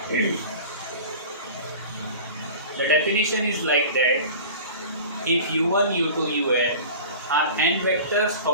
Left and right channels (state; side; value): inverted; both; correlation -0.38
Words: The definition is like that: if u1, u2, un are n vectors